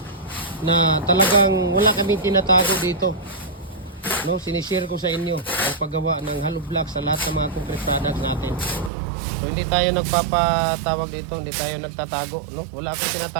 na talagang wala kaming tinatago dito, no? Sinishare ko sa inyo ang paggawa ng hollow blocks sa lahat ng mga concrete products natin. So, hindi tayo nagpapatawag dito, hindi tayo nagtatago, no? Wala akong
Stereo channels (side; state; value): left; drops out; at 8.9 s